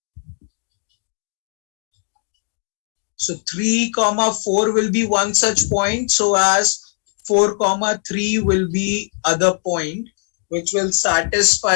So 3, 4 will be one such point, so as 4, 3 will be other point which will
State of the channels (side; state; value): right; silent; 56 dB below the other